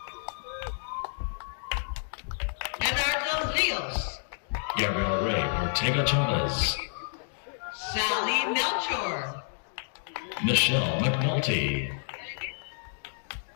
Eduardo Rios. Gabriel Ray Ortega Chavez. Sally Melchor. Michelle McNulty.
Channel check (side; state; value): right; silent; digital silence